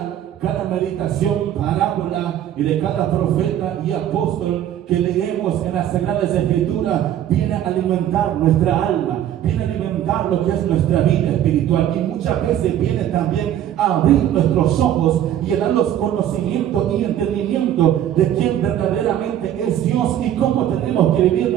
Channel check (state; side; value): quieter; left; 11.2 dB